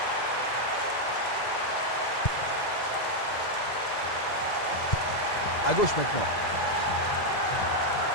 À gauche maintenant.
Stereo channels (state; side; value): late; right; 2.0 ms